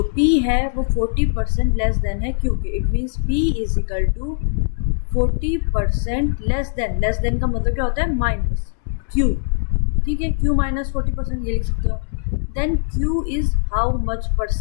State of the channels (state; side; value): silent; right; 65 dB below the other